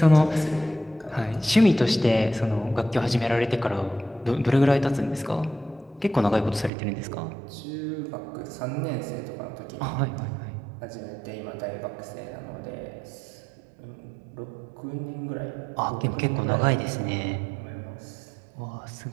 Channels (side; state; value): left; drops out; at 6.7 s